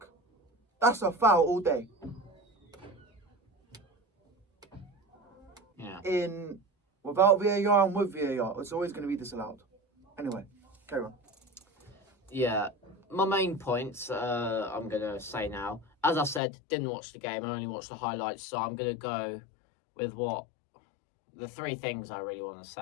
That's a foul all day. Yeah. Without VAR and with VAR, it's always going to be disallowed. Anyway, carry on. Yeah. My main points, I'm going to say now. As I said, didn't watch the game. I only watched the highlights. So I'm going to go with the three things I really want to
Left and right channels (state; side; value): drops out; right; at 16.4 s